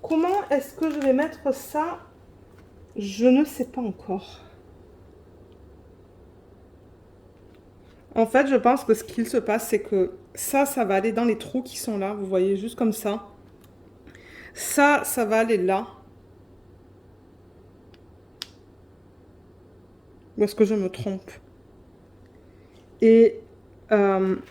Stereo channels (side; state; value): both; identical; correlation 1.00